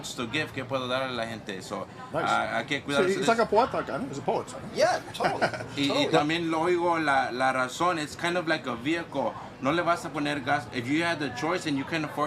to give, ¿qué puedo dar a la gente? So hay que cuidarse de eso. It's like a poeta, it's a poet. Yeah, totally. Y también lo oigo la razón. It's kind of like a vehicle. No le vas a poner gas. If you had the choice and you can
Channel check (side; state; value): both; identical; correlation 1.00